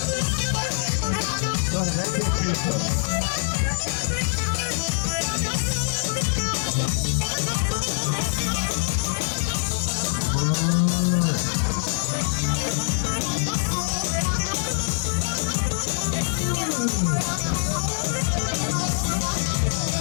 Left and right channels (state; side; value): silent; right; digital silence